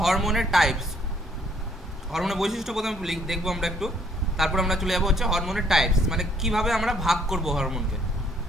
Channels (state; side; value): normal; both; correlation 0.65